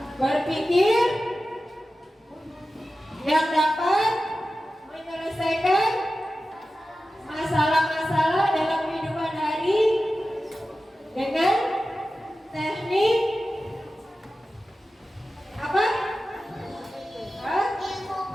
Berpikir yang dapat menyelesaikan masalah-masalah dalam kehidupan hari dengan teknik apa?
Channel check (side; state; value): both; normal; correlation 0.94